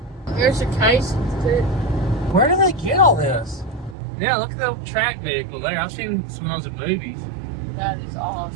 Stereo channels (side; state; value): left; drops out; at 4.0 s